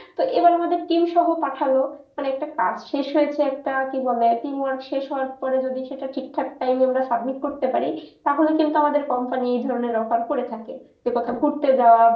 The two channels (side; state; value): both; identical; correlation 1.00